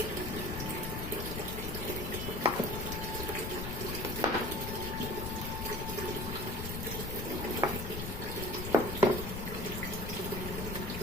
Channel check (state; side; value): noise; left; rumble, 4 dB below the sound